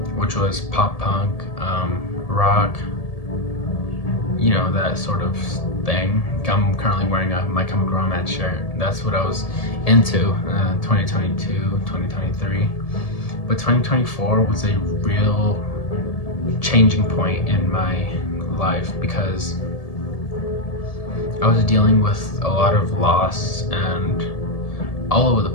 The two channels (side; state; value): right; late; 1.7 ms